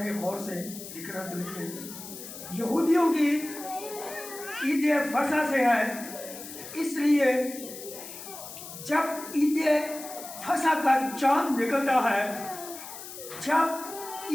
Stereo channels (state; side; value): noise; left; hiss, 12 dB below the sound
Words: गौर से, लिखना तो लिख लें, यहूदियों की ईद फसा से है, इसलिए जब ईद फसा का चांद निकलता है, जब